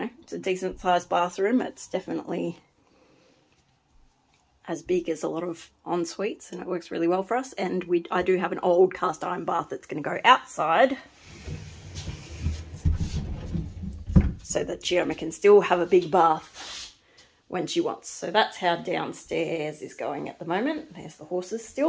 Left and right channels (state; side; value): identical; both; correlation 1.00